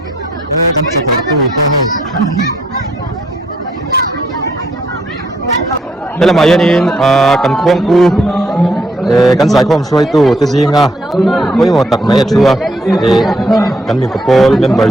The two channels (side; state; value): both; normal; correlation 0.71